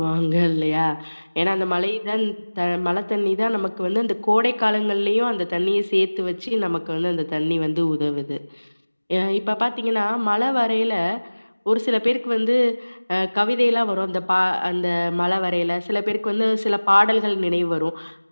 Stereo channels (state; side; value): inverted; both; correlation -1.00